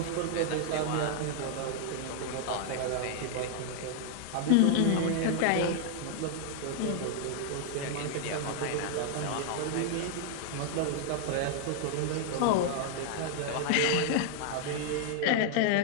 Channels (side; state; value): both; different; correlation 0.00